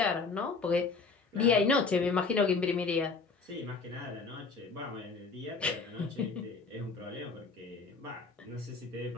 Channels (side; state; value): right; quieter; 4.4 dB